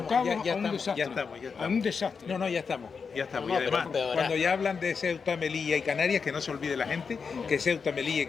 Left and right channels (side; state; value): right; quieter; 5.6 dB